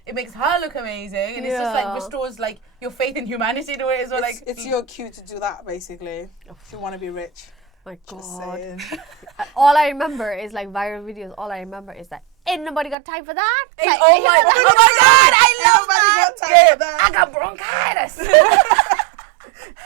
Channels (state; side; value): drops out; left; at 13.0 s